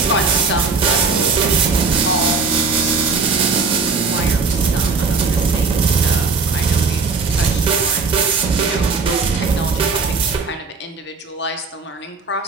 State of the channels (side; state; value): left; quieter; 4.5 dB